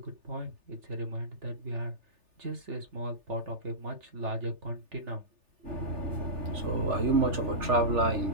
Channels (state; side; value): late; left; 3.4 ms